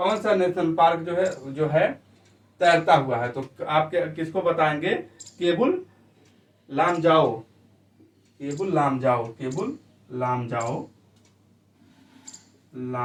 सा नेशनल पार्क जो है तैरता हुआ है, तो आप किसको बताएंगे? केबुल लामजाओ, केबुल लामजाओ, केबुल लामजाओ,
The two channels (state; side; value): identical; both; correlation 1.00